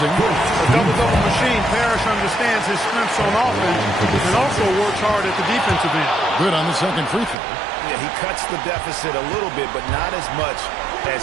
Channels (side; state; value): left; drops out; at 7.4 s